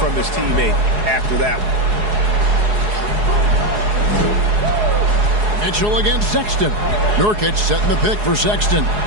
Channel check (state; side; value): late; left; 4.8 ms